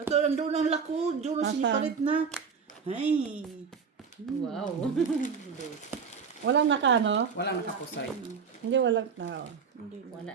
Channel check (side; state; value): left; quieter; 6.0 dB